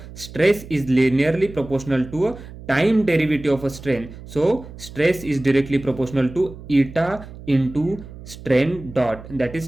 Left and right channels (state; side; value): noise; right; hum, 15 dB below the sound